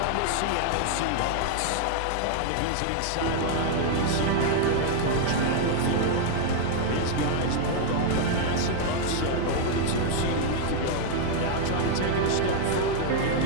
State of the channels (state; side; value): different; both; correlation 0.00